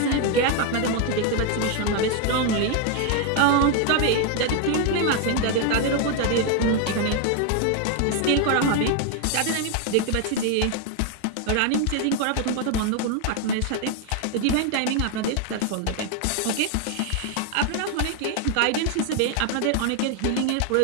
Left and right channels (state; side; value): different; both; correlation 0.01